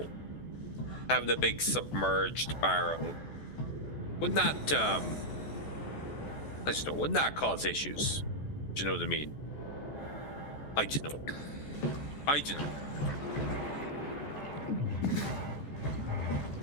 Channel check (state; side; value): late; right; 14 ms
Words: having a big submerged barrel wouldn't that wouldn't that cause issues? Do you know what I mean? I don't know.